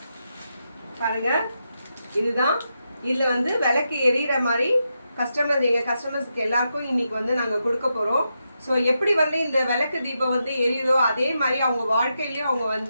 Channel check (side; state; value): both; inverted; correlation -0.85